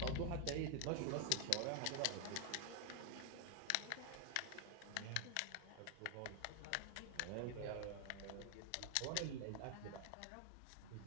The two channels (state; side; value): different; both; correlation 0.00